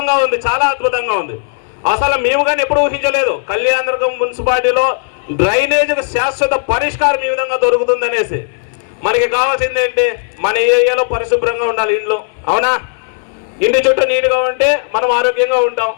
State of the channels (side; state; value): right; silent; digital silence